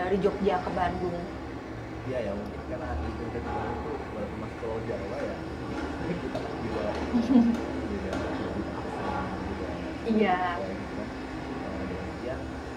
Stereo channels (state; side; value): identical; both; correlation 1.00